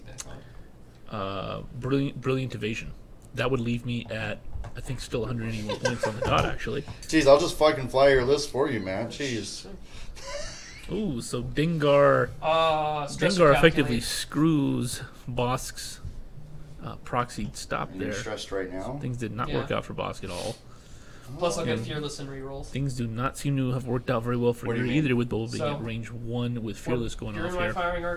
back on. brilliant evasion. That would leave me at I think still 181 points on the dot actually. Jeez, I'll just fucking fly your list for you, man. Jeez. Ooh, so Dengar Stress Dengar to effectively calculate. screws Bosk's proxied stop And you're there. stressed right now. Things did not Yeah. work out for Bosk at all. Plus, I'll get And Fearless and rerolls. things do not seem to have worked out very well for What do you you mean? either, with Boba being So- at range 1 with Fearless going You're off in my here. firing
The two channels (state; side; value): identical; both; correlation 1.00